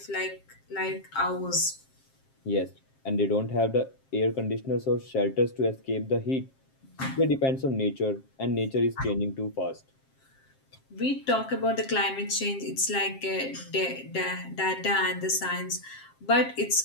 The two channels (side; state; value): right; late; 7.5 ms